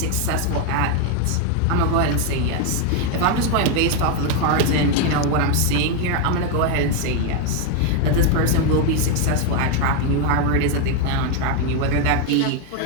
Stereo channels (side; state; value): both; different; correlation 0.01